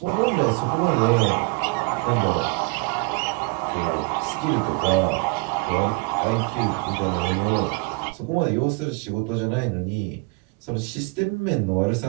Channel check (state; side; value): quieter; left; 28.8 dB